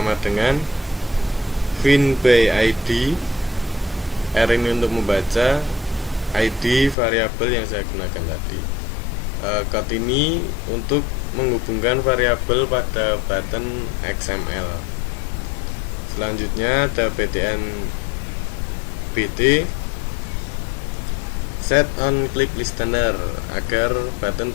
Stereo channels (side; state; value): right; drops out; at 7.0 s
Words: dengan fin by id. R ini untuk membaca, ID variabel yang saya gunakan tadi. Code ini untuk menghubungkan variabel pada button XML. Selanjutnya ada btn bt, set on click listener agar button